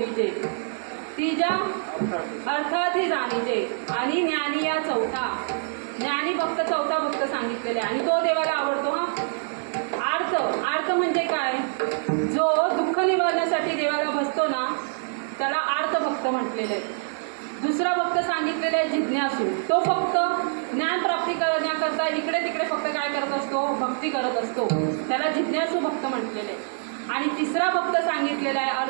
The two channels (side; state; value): left; silent; 62 dB below the other